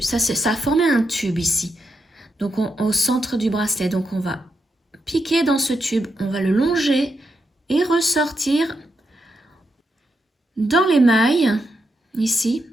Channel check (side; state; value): both; normal; correlation 0.83